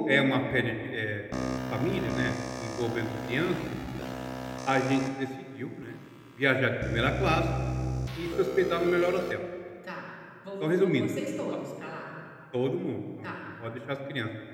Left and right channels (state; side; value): identical; both; correlation 1.00